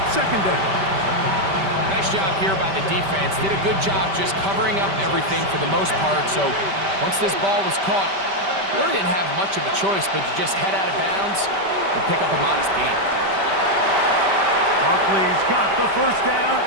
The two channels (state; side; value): late; left; 5.1 ms